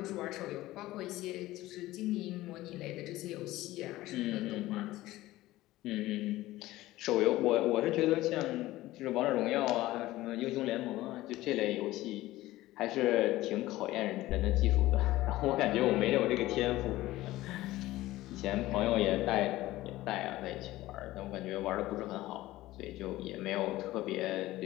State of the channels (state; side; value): quieter; right; 16.9 dB